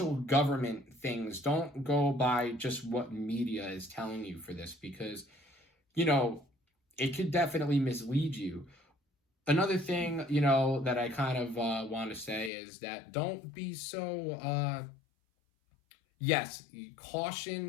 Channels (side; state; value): right; drops out; at 12.5 s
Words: government things. Don't go by just what media is telling you for this, because it could definitely mislead you. Another thing, that I kind of want to say is that don't be so yes,